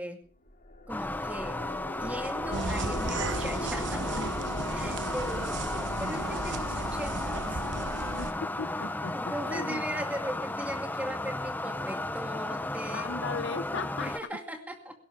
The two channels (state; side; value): normal; both; correlation 0.67